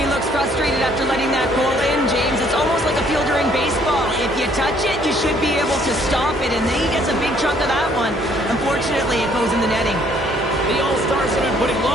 looks frustrated after letting that goal in, James. It's almost like a fielder in baseball. If you touch it, you should be able to stop it, and then he gets a big chunk of that one. Unfortunately, it goes in the netting. The All-Stars have been putting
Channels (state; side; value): normal; both; correlation 0.63